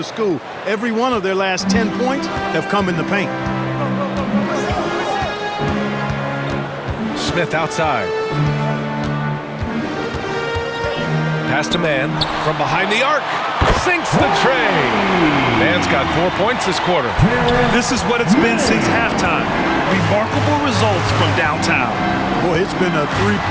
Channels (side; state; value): both; identical; correlation 1.00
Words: school. Every one of their last 10 points have come in the paint. Smith outside. Pass to Mann from behind the arc. Sinks the tray. Mann's got 4 points this quarter. This is what it's been since halftime. Remarkable results from downtown. Boy, it's been a